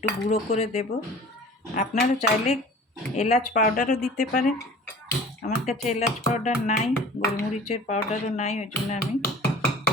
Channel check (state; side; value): normal; both; correlation 0.44